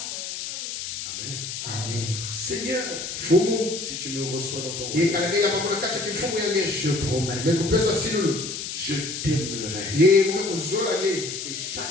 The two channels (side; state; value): left; noise; hiss, 6 dB below the sound